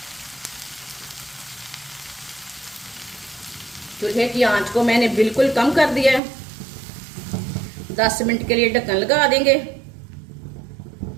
चूल्हे की आंच को मैंने बिल्कुल कम कर दिया है। 10 मिनट के लिए ढक्कन लगा देंगे।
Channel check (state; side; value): drops out; left; at 6.2 s